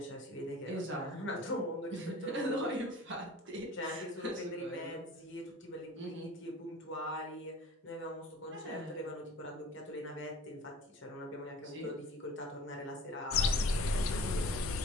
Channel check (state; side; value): normal; both; correlation 0.44